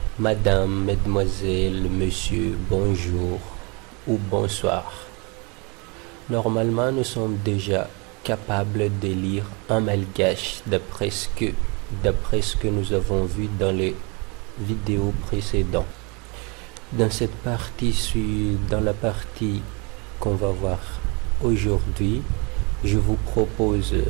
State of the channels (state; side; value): quieter; left; 30.4 dB